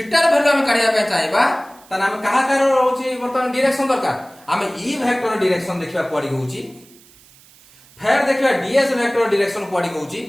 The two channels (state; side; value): noise; right; hiss, 26 dB below the sound